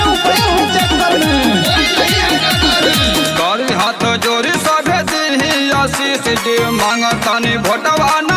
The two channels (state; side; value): identical; both; correlation 1.00